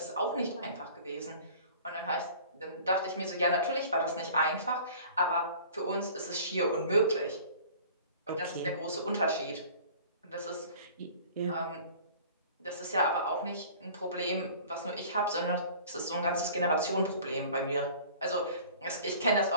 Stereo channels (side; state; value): both; inverted; correlation -0.46